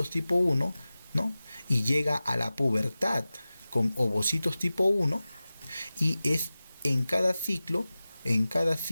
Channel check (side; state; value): both; inverted; correlation -0.96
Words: tipo 1, ¿no? Y llega a la pubertad con ovocitos tipo 1 y es en cada ciclo, en